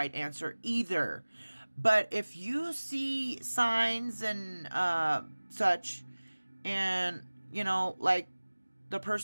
answer either. But if you see signs and such, and, like the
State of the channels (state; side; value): inverted; both; correlation -1.00